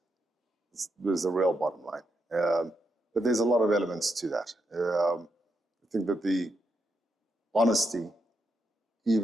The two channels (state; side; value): normal; both; correlation 0.82